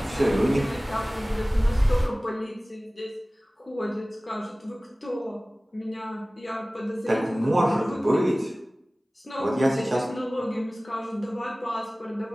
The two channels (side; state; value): both; normal; correlation 0.98